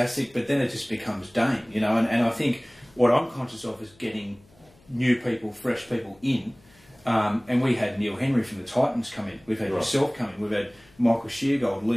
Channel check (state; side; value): noise; left; hum, 29 dB below the sound